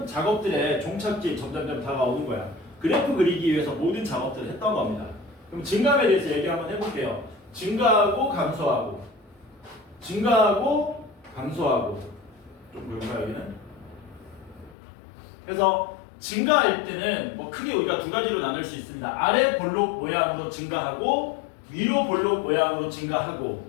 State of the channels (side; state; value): right; drops out; at 14.8 s